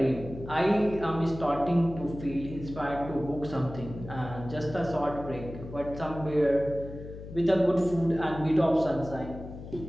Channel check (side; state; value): left; noise; hum, 12 dB below the sound